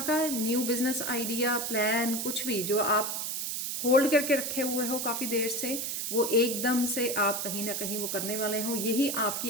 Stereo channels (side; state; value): right; noise; hiss, 2 dB below the sound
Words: न्यू बिजनेस आइडिया, प्लान, कुछ भी जो आप होल्ड करके रखे हुए हो काफ़ी देर से, वो एकदम से आप कहीं ना कहीं वो करने वाले हो। यही